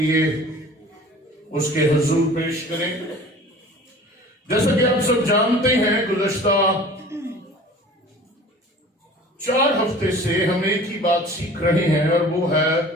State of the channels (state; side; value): normal; both; correlation 0.44